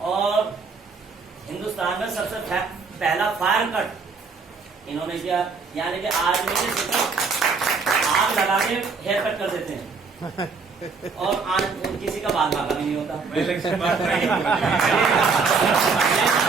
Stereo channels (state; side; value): quieter; left; 4.7 dB